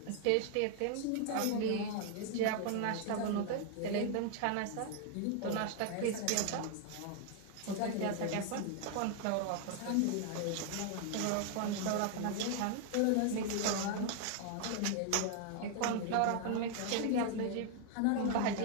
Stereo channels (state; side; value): different; both; correlation 0.00